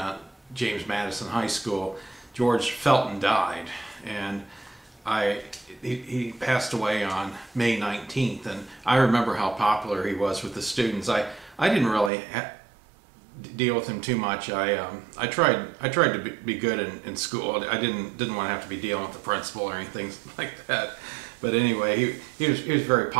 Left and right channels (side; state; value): left; drops out; at 12.1 s